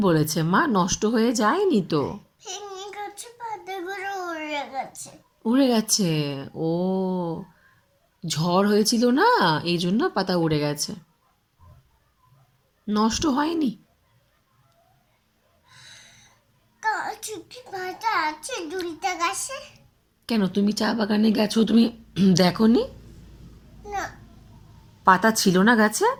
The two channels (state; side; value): identical; both; correlation 1.00